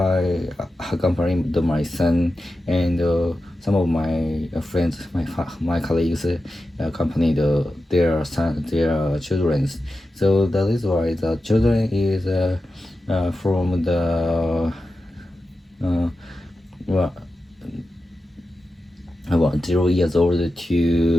accompanied my son, and some of my friends, my colleagues accompanied their children. So that is why the children is from the well, about 0 years old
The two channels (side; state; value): both; normal; correlation 0.92